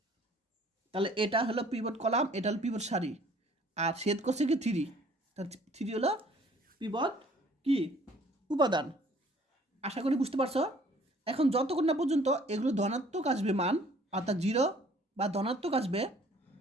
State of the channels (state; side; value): normal; both; correlation 0.56